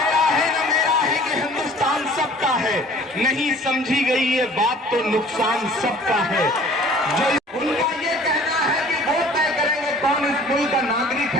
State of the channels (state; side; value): normal; both; correlation 0.50